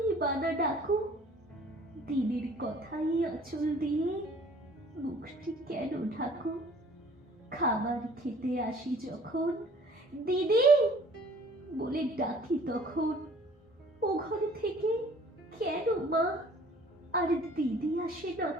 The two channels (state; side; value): normal; both; correlation 0.53